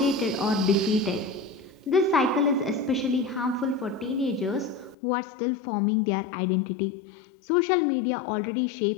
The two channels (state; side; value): drops out; right; at 5.0 s